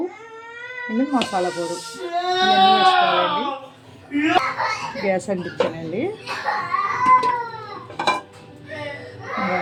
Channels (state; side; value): identical; both; correlation 1.00